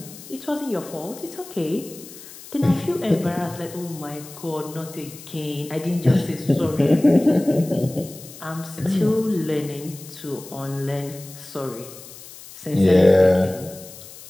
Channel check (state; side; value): noise; left; hiss, 17 dB below the sound